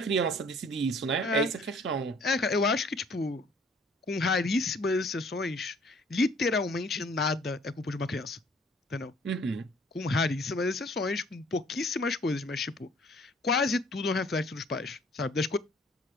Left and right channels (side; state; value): both; normal; correlation 0.57